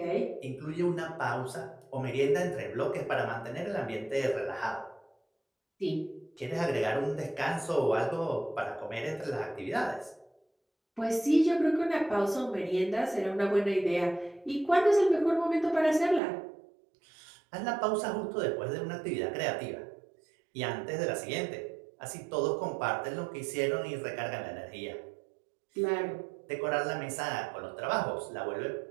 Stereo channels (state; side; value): drops out; left; at 16.2 s